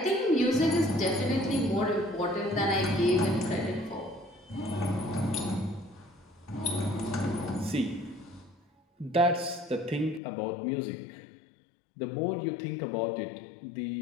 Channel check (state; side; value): drops out; right; at 10.2 s